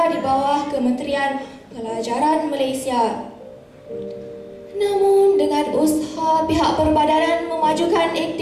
di bawah Kementerian Pelajaran Malaysia. Namun dengan usaha pihak Perbadanan Memajukan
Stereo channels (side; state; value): both; identical; correlation 1.00